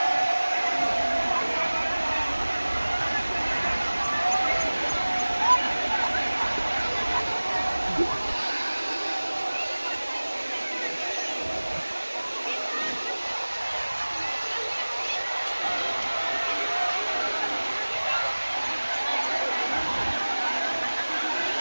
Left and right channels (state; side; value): inverted; both; correlation -1.00